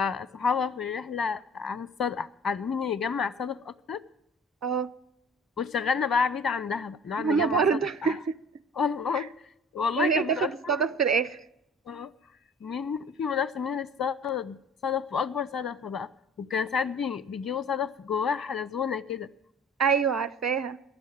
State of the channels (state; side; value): normal; both; correlation 0.46